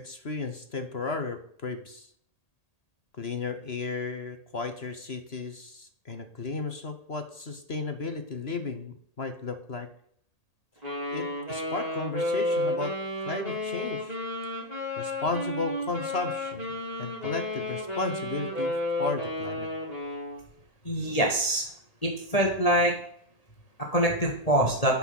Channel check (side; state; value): right; late; 1.8 ms